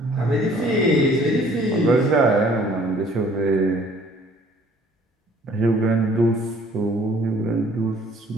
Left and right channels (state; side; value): normal; both; correlation 0.56